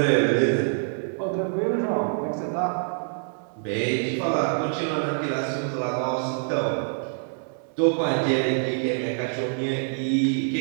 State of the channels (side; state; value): left; silent; digital silence